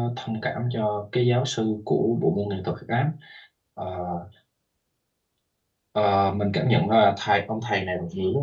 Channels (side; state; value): both; identical; correlation 1.00